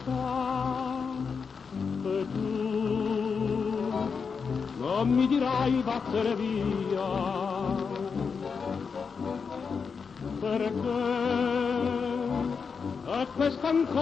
E tu non mi dirai vattene via, perché è questa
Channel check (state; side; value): quieter; right; 5.6 dB